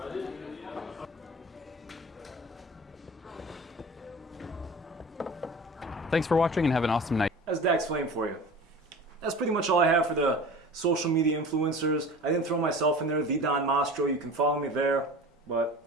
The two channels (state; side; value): normal; both; correlation 0.38